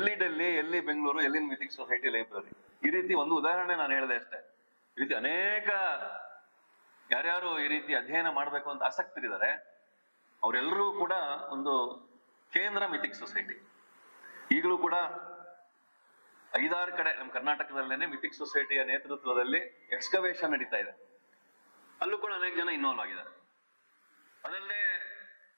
ಡೆಲ್ಲಿ, ಎಲ್ಲಿ ಬೆಂಗಳೂರು, ಎಲ್ಲಿ ಮಿಥಿಕ್ ಸೊಸೈಟಿ ಲೈಬ್ರರಿ. ಈ ರೀತಿ ಒಂದು ಉದಾಹರಣೆ ನಾನು ಹೇಳಿದೆ ಅಷ್ಟೇ. ಈ ರೀತಿ ಅನೇಕ ಯಾರ್ಯಾರು ಈ ರೀತಿ ಅಧ್ಯಯನ ಮಾಡ್ಬೇಕು ಅಂತ ಆಸಕ್ತರಿದ್ದಾರೆ, ಅವರೆಲ್ಲರೂ ಕೂಡ ಒಂದು ಕೇಂದ್ರ ಮಿಥಿಕ್ ಸೊಸೈಟಿ. ಈಗಲೂ ಕೂಡ 5-6 ಕಡೆ ನಮ್ಮ ಕರ್ನಾಟಕದಲ್ಲೇನೆ ಮಿಥಿಕ್ ಸೊಸೈಟಿಯ ನೇತೃತ್ವದಲ್ಲಿ ಎಕ್ಸ್ಕವೇಷನ್ ನಡೀತಾ ಇದೆ. ಅಲ್ಲೂ ಕೂಡ ಅನೇಕ ಜನ ಇನ್ವಾಲ್ವ್ ಆಗಿದ್ದಾರೆ. ಅದಲ್ಲದೆ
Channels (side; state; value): both; inverted; correlation -1.00